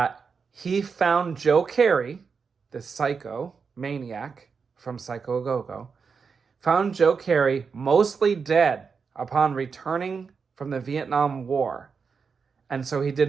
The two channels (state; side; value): quieter; left; 5.5 dB